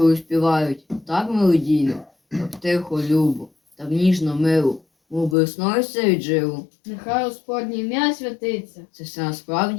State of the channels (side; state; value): right; drops out; at 5.4 s